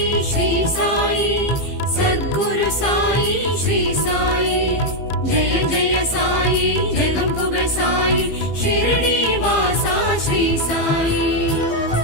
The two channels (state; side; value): late; right; 15 ms